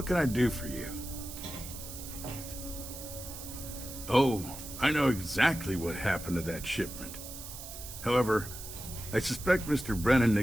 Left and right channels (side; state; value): right; noise; hiss, 11 dB below the sound